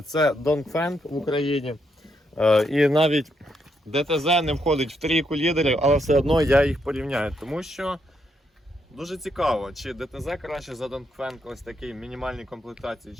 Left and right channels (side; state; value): both; normal; correlation 0.78